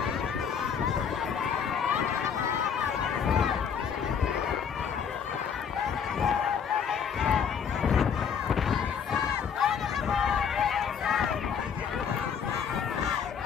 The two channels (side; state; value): right; quieter; 7.2 dB